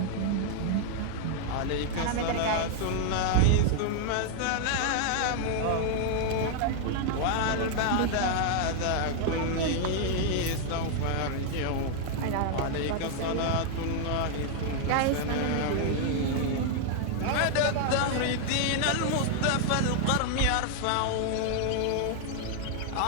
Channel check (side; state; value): both; different; correlation 0.00